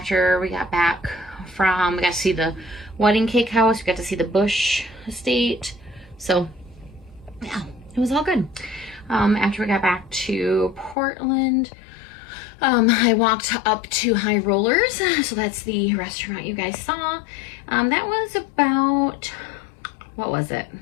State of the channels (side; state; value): right; drops out; at 11.0 s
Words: we got back from, we got to see the wedding cake house. We got to see the Bush estate. So, yeah, it was all good. After we got back to Portland, I walked up to Highrollers, so that's the restaurant you guys saw. That was about, what was it?